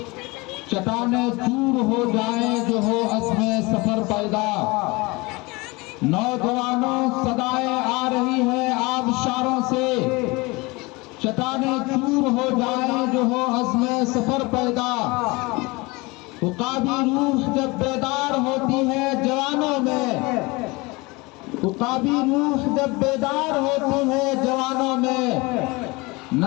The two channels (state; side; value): quieter; right; 24.5 dB